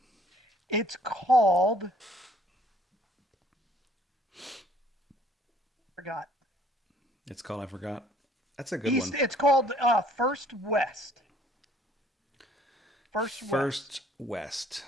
It's called. Forgot. It's called, I forgot. That's a good East. one. It's called First West. First West. First West.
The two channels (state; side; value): normal; both; correlation 0.59